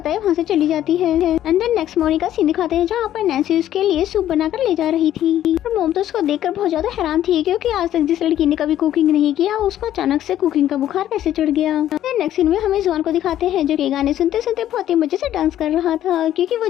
वहाँ से चली जाती है। एंड देन नेक्स्ट मॉर्निंग का सीन दिखाते हैं, जहाँ पर नैन्सी उसके लिए सूप बनाकर ले जा रही थी। और मोम तो उसको देखकर बहुत ज्यादा हैरान थी, क्योंकि आज तक जिस लड़की ने कभी कुकिंग नहीं किया उसको अचानक से कुकिंग का बुखार कैसे चढ़ गया। नेक्स्ट सीन में हमें जुआन को दिखाते हैं, जो कि गाने सुनते सुनते बहुत ही मजे से डांस कर रहा था, क्योंकि वो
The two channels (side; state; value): right; quieter; 12.0 dB